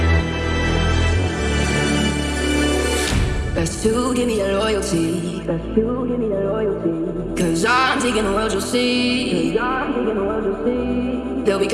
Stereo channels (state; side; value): identical; both; correlation 1.00